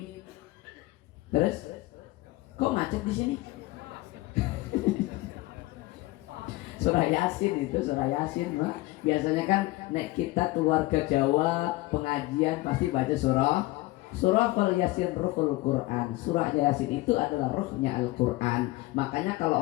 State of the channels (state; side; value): quieter; right; 20.0 dB